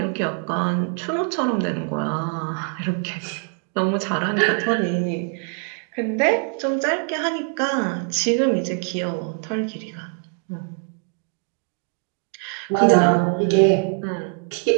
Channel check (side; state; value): left; quieter; 38.8 dB